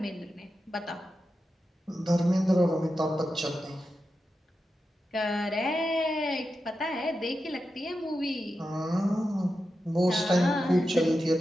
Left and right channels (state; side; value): normal; both; correlation 0.90